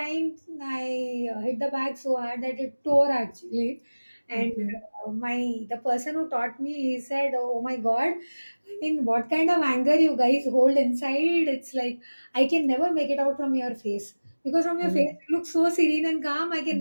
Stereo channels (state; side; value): inverted; both; correlation -1.00